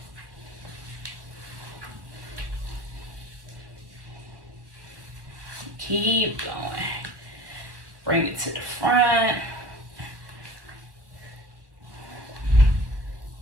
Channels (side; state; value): left; late; 1.2 ms